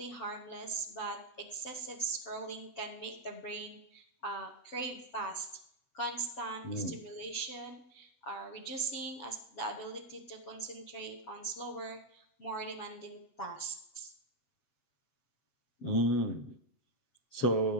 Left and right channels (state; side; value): late; right; 7.9 ms